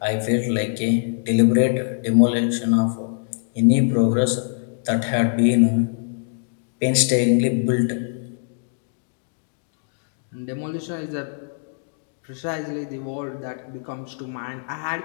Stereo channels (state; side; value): silent; right; digital silence